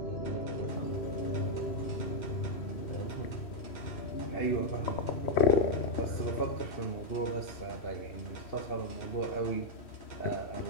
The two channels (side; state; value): right; late; 3.1 ms